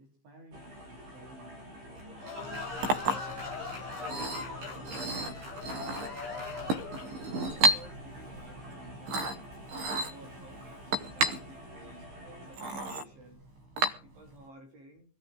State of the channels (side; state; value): left; late; 15 ms